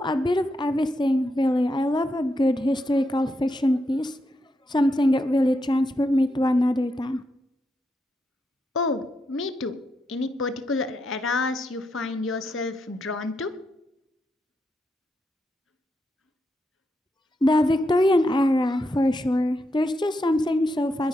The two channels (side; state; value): both; normal; correlation 0.83